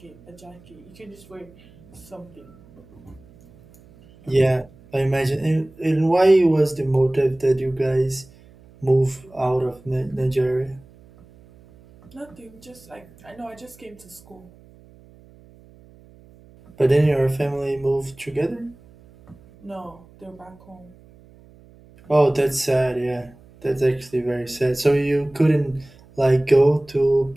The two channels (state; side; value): noise; right; hum, 25 dB below the sound